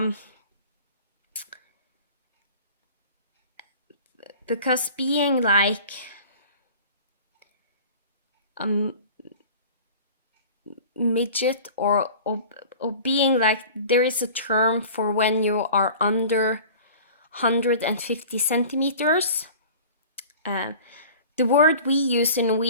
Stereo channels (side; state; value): both; inverted; correlation -0.42